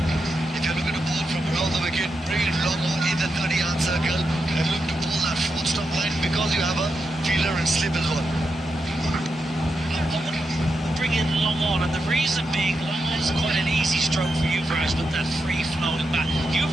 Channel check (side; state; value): both; normal; correlation 0.86